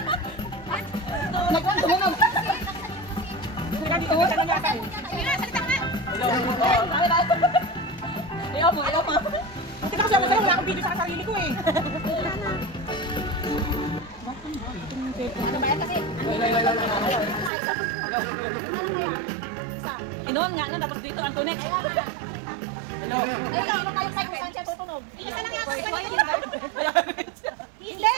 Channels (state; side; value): drops out; left; at 17.5 s